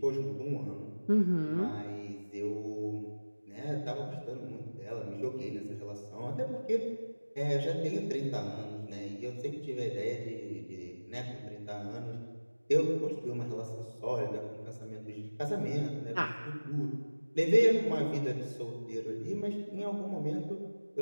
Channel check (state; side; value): inverted; both; correlation -1.00